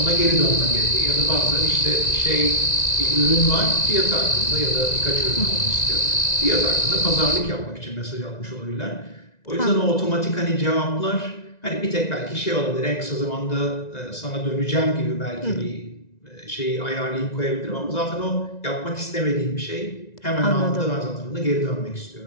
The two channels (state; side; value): late; right; 1.9 ms